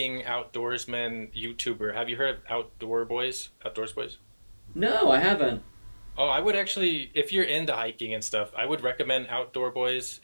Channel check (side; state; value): both; inverted; correlation -1.00